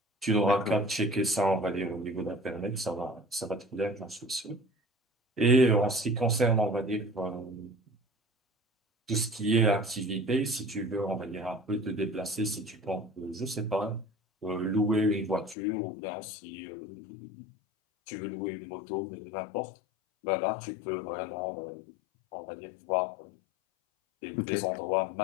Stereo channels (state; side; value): drops out; right; at 15.6 s